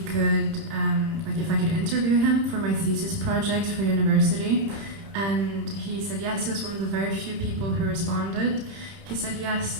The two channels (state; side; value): late; left; 30 ms